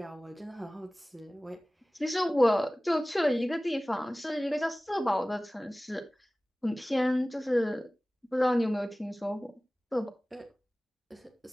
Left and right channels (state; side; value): normal; both; correlation 0.98